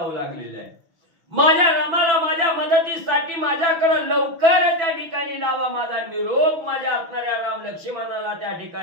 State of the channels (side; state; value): left; late; 6.0 ms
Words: लागलेले आहे, माझ्या रामाला माझ्या मदतीसाठी माझ्याकडे लवकर त्या ठिकाणी लावा, माझा निरोप माझ्या असणाऱ्या राम लक्ष्मणाला त्या